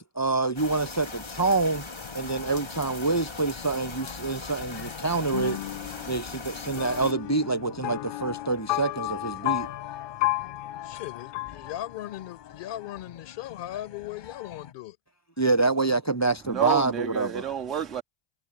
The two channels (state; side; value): late; right; 1.3 ms